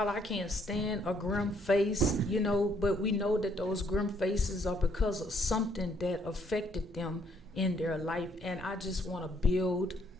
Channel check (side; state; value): both; normal; correlation 0.68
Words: I can't stand a grim face, but we know that those grim faces are because of something that affected them in their life. And I just want to build